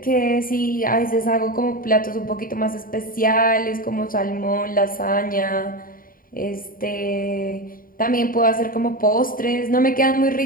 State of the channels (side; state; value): right; late; 0.41 ms